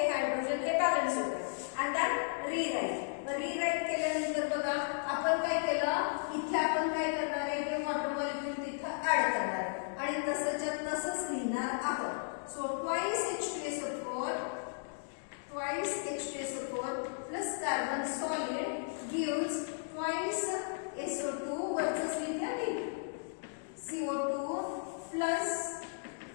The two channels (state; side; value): silent; right; digital silence